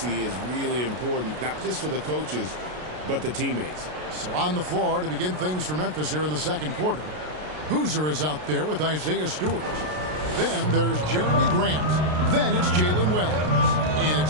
is really important, not just for the coaches, but the teammates. So on the floor to begin things for Memphis here in the second quarter, Boozer is out there with Isaiah Stewart. Then there's Jeremy Grant. Then it's Jalen Wells. And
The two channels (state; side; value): late; left; 33 ms